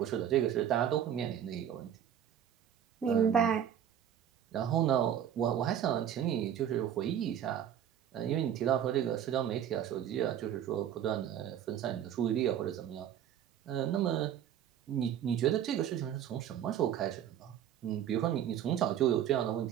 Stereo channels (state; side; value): quieter; left; 9.8 dB